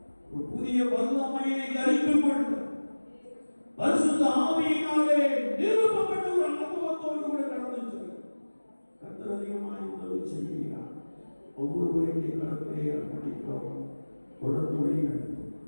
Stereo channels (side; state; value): both; inverted; correlation -1.00